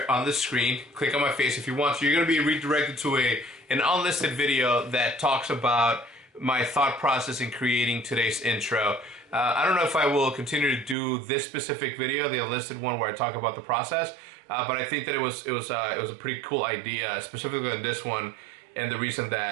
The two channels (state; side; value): drops out; left; at 11.0 s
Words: on the screen, click on my face if you want to, you're going to be redirected to an unlisted video that talks about my thought process in creating today's intro. I don't know if I will continue to do this specific video, the unlisted one where I talk about the process, but I think that it was a pretty cool idea, specifically on this one. And the reason